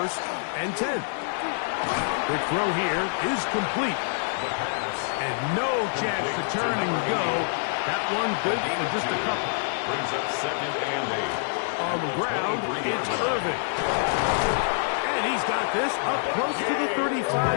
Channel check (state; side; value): silent; right; digital silence